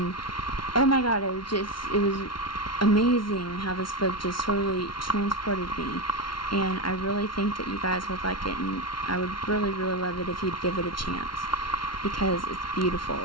oh my god, it was amazing how this book just totally transported me. And I really think that you guys would like it, and I would really, really love it if you'd give it a chance, because it's beautiful,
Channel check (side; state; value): right; late; 0.73 ms